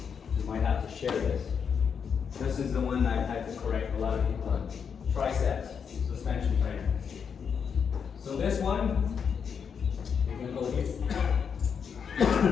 You might have to share this. This is the one I had to correct a lot of people on. Triceps, suspension trainer. So this one, you're gonna go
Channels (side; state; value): right; quieter; 6.8 dB